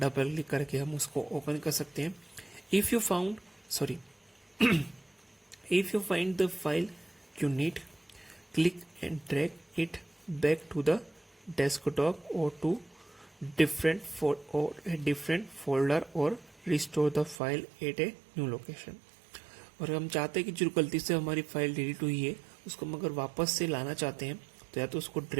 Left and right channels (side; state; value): left; drops out; at 17.4 s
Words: क्लिक करके हम उसको ओपन कर सकते हैं। If you found sorry if you find the file you need, click and drag it back to the desktop or to a different folder or restore the file at a new location। और हम चाहते हैं कि जो गलती से हमारी file delete हुई है उसको हम अगर वापस से लाना चाहते हैं तो या तो उसको